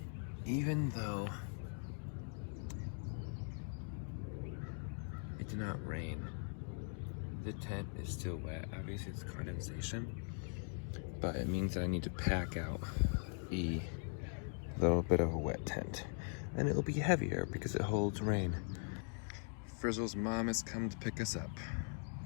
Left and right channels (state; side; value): silent; right; 50 dB below the other